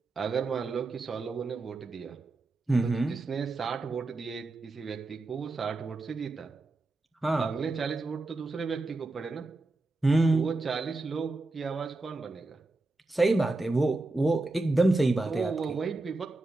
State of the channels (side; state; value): left; quieter; 3.1 dB